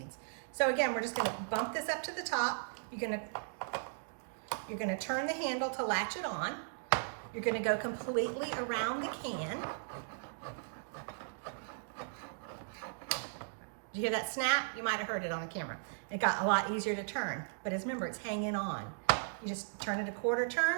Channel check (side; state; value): left; silent; digital silence